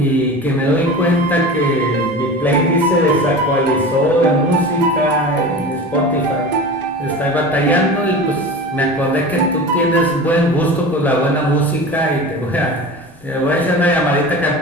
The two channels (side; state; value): both; normal; correlation 0.33